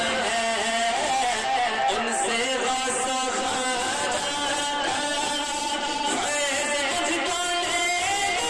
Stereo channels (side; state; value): both; identical; correlation 1.00